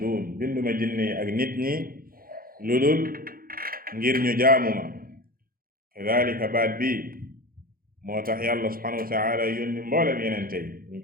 binduma jinne yi ak nit ñi lu dul ngir ñu jaamu ma kadalika baat bi moo tax yàlla subhanahu wa taala yónni mboolem yenente yi ñu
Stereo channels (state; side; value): late; left; 0.42 ms